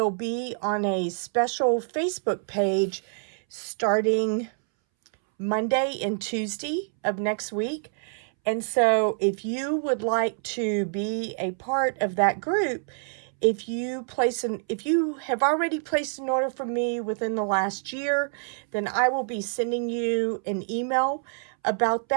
be on a special Facebook page starting Monday and Tuesday of next week. And so if you would like to be a part of that group, if you have already placed an order from me within the last year, then I will be sending you an email about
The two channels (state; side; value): silent; left; 61 dB below the other